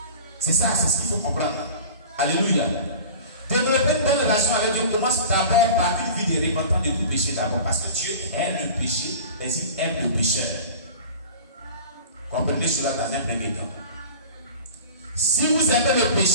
C'est ça, c'est ce qu'il faut comprendre. Alléluia. Développer une bonne relation avec Dieu commence d'abord par une vie de repentance de tout péché d'abord. Parce que Dieu aime le péché, et il aime le pécheur. Comprenez cela dans un premier temps. Si vous aimez le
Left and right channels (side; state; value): both; inverted; correlation -0.39